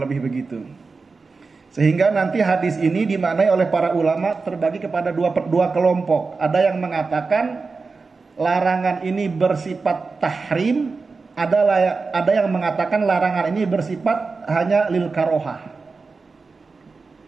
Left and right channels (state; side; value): quieter; left; 4.3 dB